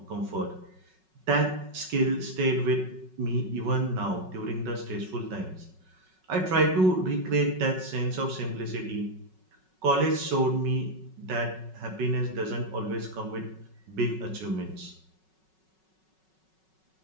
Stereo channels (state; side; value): late; left; 5.4 ms